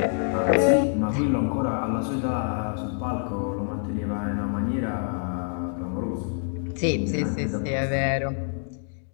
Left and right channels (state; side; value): silent; right; 61 dB below the other